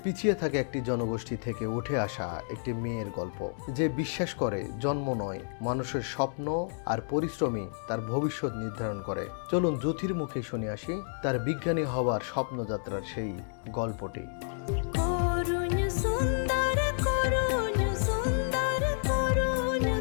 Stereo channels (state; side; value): silent; right; 58 dB below the other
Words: পিছিয়ে থাকা একটি জনগোষ্ঠী থেকে উঠে আসা একটি মেয়ের গল্প, যে বিশ্বাস করে জন্ম নয়, মানুষের স্বপ্ন আর পরিশ্রমই তার ভবিষ্যৎ নির্ধারণ করে। চলুন জ্যোতির মুখে শুনে আসি তার বিজ্ঞানী হওয়ার স্বপ্নযাত্রার সেই গল্পটি।